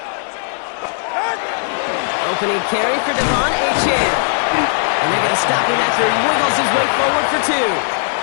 Opening carry for Devon Achane. And they're going to stop him after he wiggles his way forward for 2.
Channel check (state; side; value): silent; right; digital silence